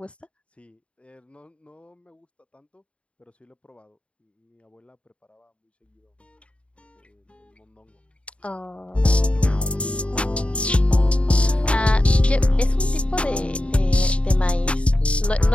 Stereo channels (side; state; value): right; late; 0.061 ms